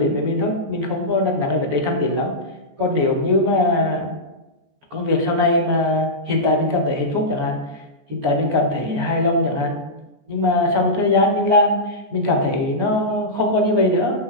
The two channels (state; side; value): late; left; 14 ms